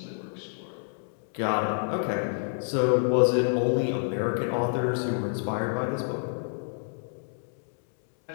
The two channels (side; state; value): right; silent; 59 dB below the other